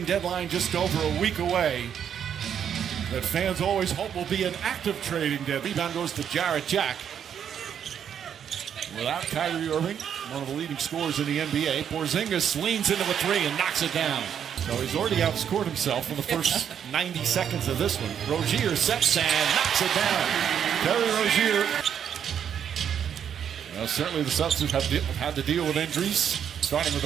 deadline just over a week away that fans always hope will be an active trading deadline. Rebound goes to Jarrett Jack. Without Kyrie Irving, one of the leading scorers in the NBA, Porzingis leans into a three and knocks it down. So he's already outscored himself in the first 90 seconds of this one. Rozier sets and knocks it down. Terry Rozier. Well, certainly the Celtics have had to deal with injuries, starting with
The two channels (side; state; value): left; quieter; 8.6 dB